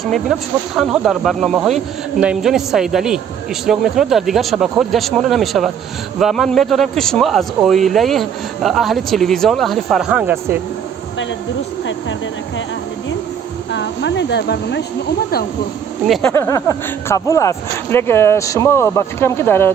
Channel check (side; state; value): left; quieter; 8.1 dB